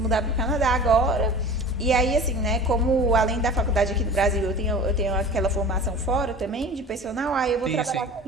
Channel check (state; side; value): normal; both; correlation 0.38